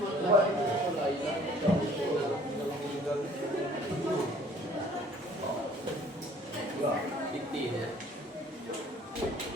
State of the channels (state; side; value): normal; both; correlation 0.55